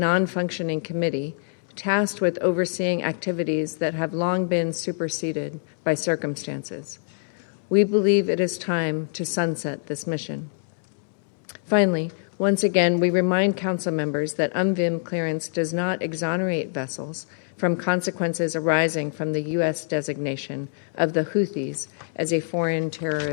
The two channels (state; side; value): silent; right; digital silence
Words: committee tasked with overseeing activities that have long been superseded by circumstances. We believe it is time to sunset this mission. Finally, once again, we remind Council members that UNVIM clearance does not exonerate vessels from consequences arising from the U.S. designation of the Houthis as a foreign